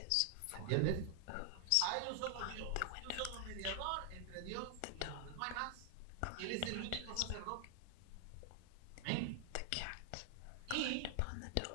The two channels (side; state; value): both; different; correlation 0.00